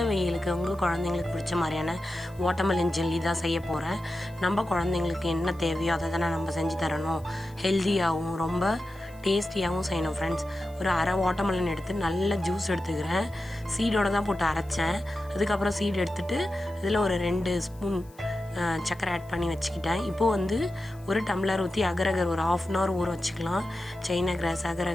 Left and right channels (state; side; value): noise; left; hiss, 27 dB below the sound